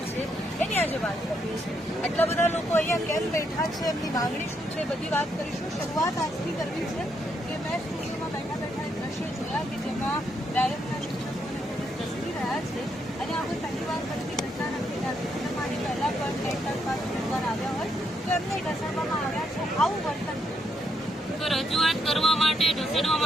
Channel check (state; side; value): normal; both; correlation 0.77